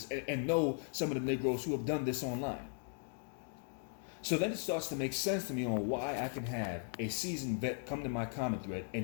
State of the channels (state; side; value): silent; right; 53 dB below the other